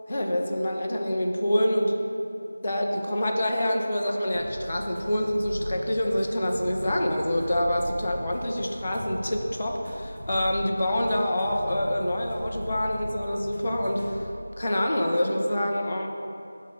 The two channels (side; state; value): both; inverted; correlation -0.95